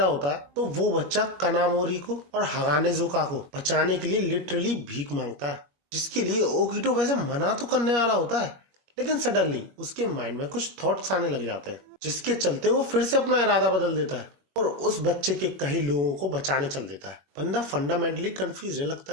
होता है, तो वो बच्चा कनामोरी को और हगाने ज़ोका को बचाने के लिए लिटरली भीख मांगता है, जिसके लिए ओकिटो वैसे मना तो करने वाला होता है, लेकिन सडनली उसके माइंड में कुछ थॉट्स आने लग जाते हैं, जिसके चलते वो फिर से अपना इरादा बदल देता है और उस बच्चे के कई लोगों को बचाने चल देता है। बंदा फंडामेंटली कंफ्यूज लगता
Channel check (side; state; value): left; late; 21 ms